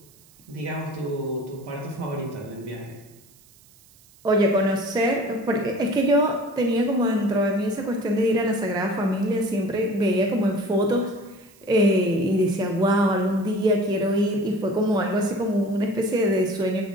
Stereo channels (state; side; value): noise; right; hiss, 28 dB below the sound